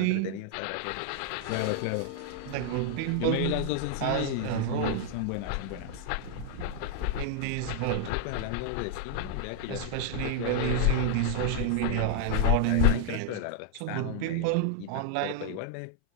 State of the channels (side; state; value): both; different; correlation 0.00